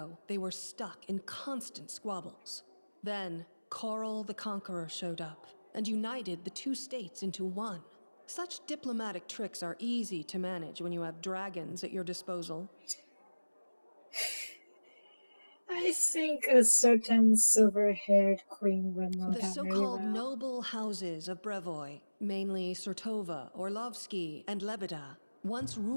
they were stuck in constant squabbles. Then, Coral the Conqueror showed up and united the two states into one. Such diplomatic tricks are easy to manage when you have dragons at your disposal. I think a certain silver-haired queen would know The that very so-called well. noble houses of Brevoy, mainly Sertova, Orlovsky, and Lebeda, once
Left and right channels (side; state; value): both; inverted; correlation -1.00